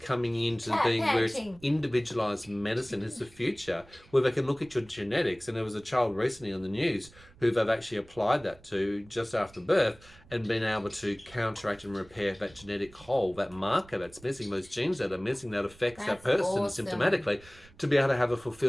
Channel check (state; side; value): noise; right; rumble, 24 dB below the sound